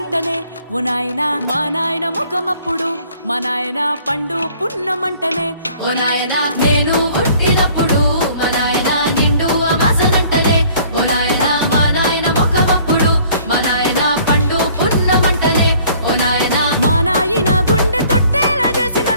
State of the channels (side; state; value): both; inverted; correlation -0.55